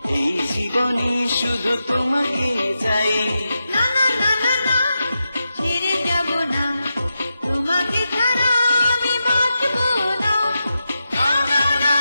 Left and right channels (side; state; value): both; inverted; correlation -0.89